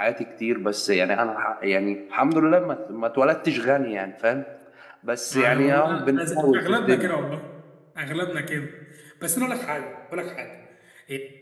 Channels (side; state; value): both; identical; correlation 1.00